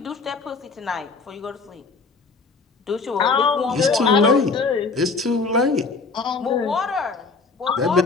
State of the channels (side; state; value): right; quieter; 4.3 dB